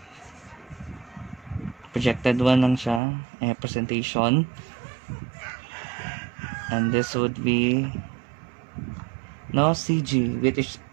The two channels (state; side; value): drops out; left; at 3.0 s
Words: projected one lang siya, presentation. And this would be no CG, which is